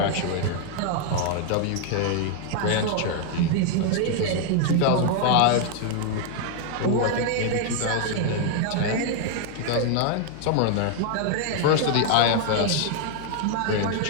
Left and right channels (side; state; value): both; different; correlation 0.00